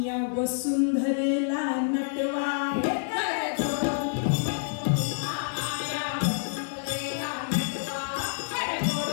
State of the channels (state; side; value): silent; right; 59 dB below the other